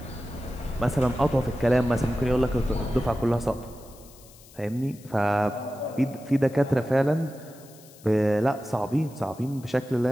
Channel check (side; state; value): left; noise; hiss, 23 dB below the sound